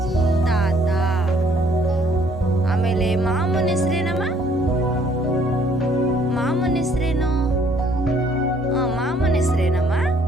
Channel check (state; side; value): normal; both; correlation 0.63